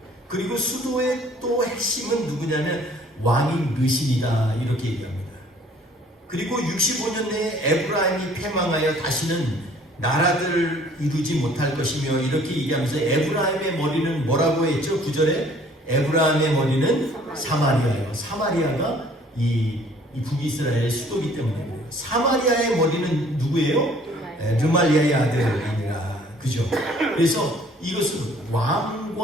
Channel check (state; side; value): normal; both; correlation 0.56